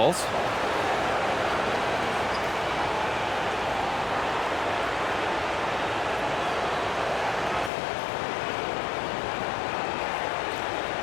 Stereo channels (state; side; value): drops out; right; at 7.7 s